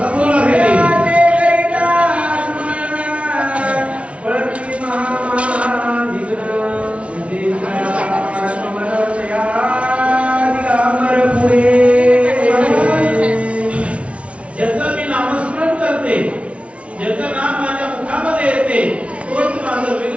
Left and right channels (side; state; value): left; late; 0.062 ms